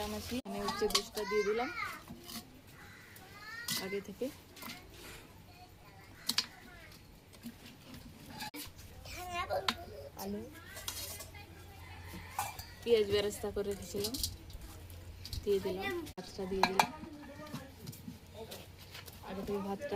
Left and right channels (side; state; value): both; identical; correlation 1.00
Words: আনাচ্ছি, এখানে হচ্ছে দুধটা দিয়ে দিলাম আগে থেকে। আলু পেঁয়াজ বেরেস্তা করে রেখেছিলাম, দিয়ে দিলাম। ভাতটা দিয়ে দিলাম, আগে থেকে ভাতটা